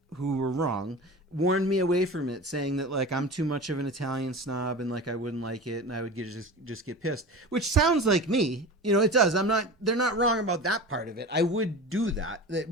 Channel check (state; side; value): normal; both; correlation 0.32